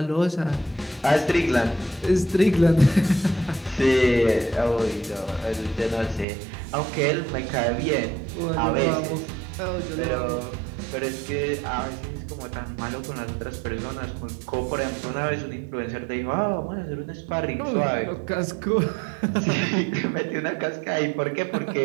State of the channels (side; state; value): left; drops out; at 6.2 s